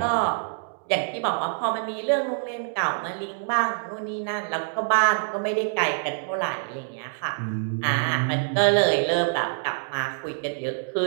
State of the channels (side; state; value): left; silent; digital silence